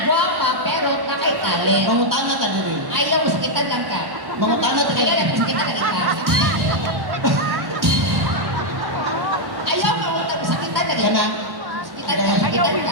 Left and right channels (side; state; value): left; late; 1.1 ms